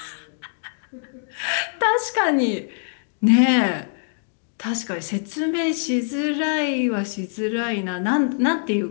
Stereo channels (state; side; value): silent; right; digital silence